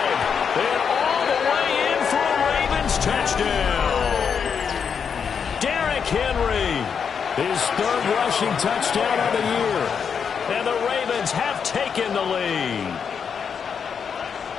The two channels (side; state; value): right; quieter; 6.7 dB